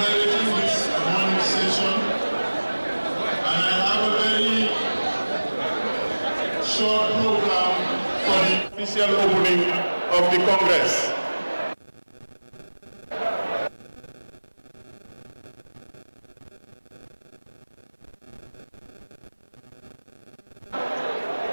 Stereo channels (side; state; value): both; inverted; correlation -1.00